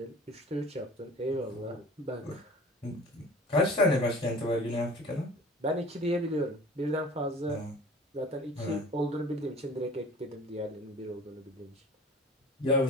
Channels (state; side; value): normal; both; correlation 0.43